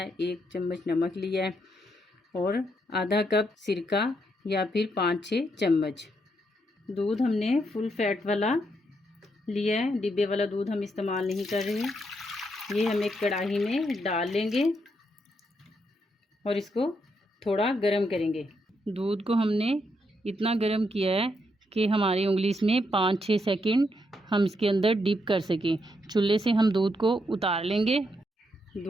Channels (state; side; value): normal; both; correlation 0.78